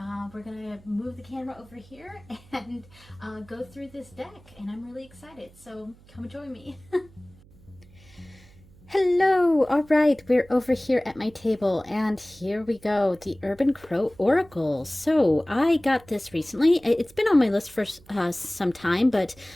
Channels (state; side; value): noise; right; hum, 25 dB below the sound